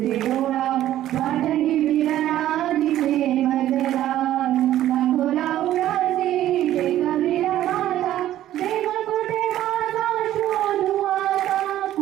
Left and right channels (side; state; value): left; quieter; 13.0 dB